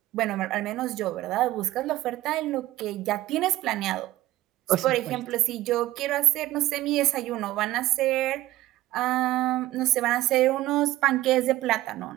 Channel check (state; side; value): quieter; left; 16.1 dB